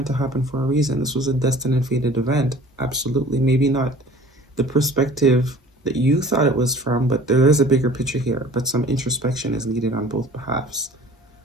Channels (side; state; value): both; normal; correlation 0.47